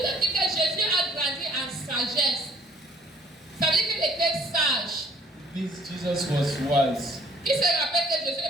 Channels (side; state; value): both; normal; correlation 0.59